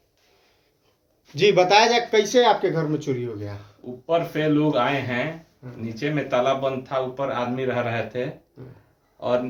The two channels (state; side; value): identical; both; correlation 1.00